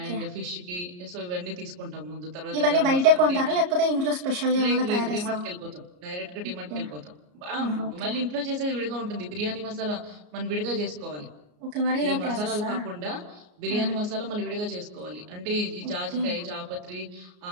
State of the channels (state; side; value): late; left; 33 ms